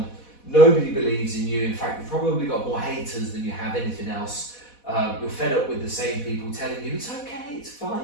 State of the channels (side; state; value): right; late; 4.1 ms